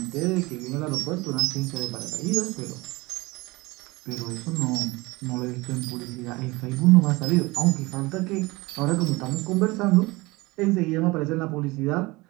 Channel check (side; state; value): left; quieter; 22.7 dB